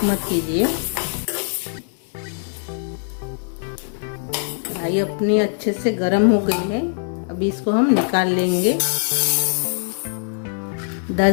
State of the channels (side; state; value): right; silent; digital silence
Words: मत कीजिए। ये अपनी अच्छे से गर्म हो गई है। अभी इसको हम निकाल लेंगे।